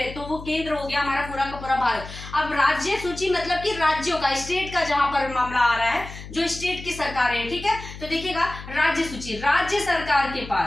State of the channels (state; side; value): noise; left; hum, 13 dB below the sound